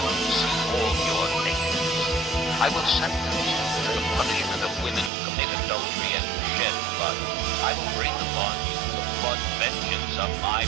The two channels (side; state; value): left; drops out; at 5.1 s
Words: will see all your nakedness. I will sentence you to the punishment of women who commit adultery and who shed blood. I will bring upon you the blood vengeance of my